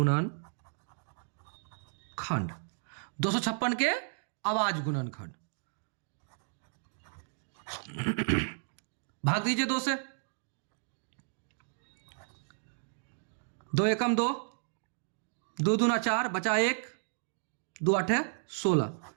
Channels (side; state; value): left; silent; digital silence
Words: 256 के अभाज्य गुणनखंड भाग दीजिए 2 से। 2 एकम 2, 2 दूना 4, बचा 1, 2 8 16,